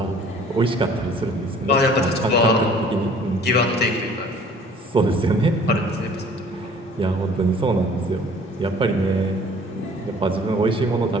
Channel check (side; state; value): both; normal; correlation 0.52